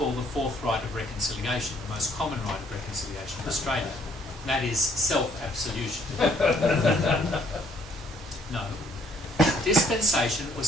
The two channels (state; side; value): normal; both; correlation 0.64